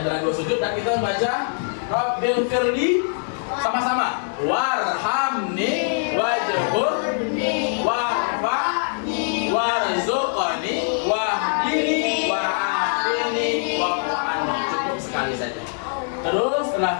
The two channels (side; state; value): right; silent; 64 dB below the other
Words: dua sujud dan kita membaca Rabbil firli sama-sama. Warhamni wajburni warfa'ni warzuqni wahdini wa'afini wa'afani. Cukup sekali saja. Terus